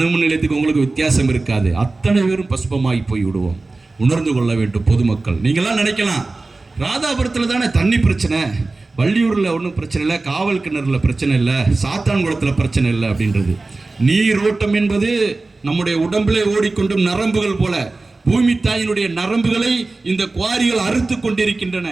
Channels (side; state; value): left; quieter; 3.4 dB